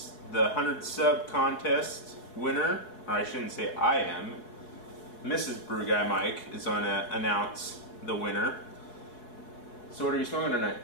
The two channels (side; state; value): right; late; 4.7 ms